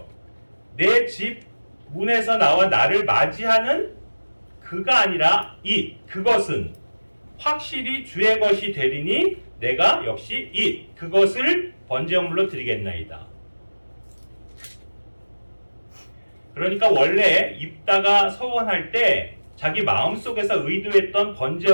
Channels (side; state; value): both; inverted; correlation -1.00